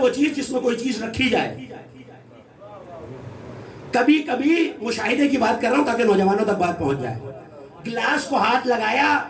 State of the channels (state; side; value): identical; both; correlation 1.00